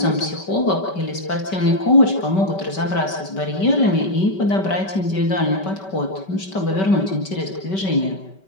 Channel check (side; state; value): right; late; 5.2 ms